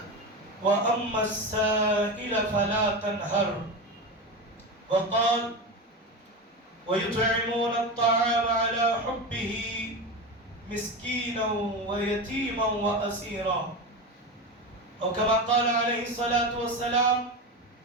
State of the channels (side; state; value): both; normal; correlation 0.21